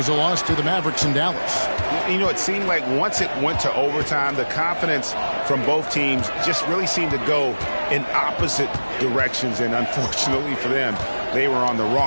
a loss to the Mavericks in Dallas. You know, it seemed like once it went to overtime, the confidence from both teams just really seemed to go in opposite directions. And unfortunately for them, they were on the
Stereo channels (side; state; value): both; inverted; correlation -1.00